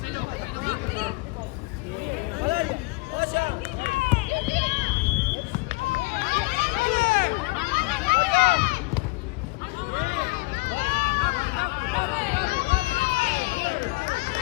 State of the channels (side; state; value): right; quieter; 25.3 dB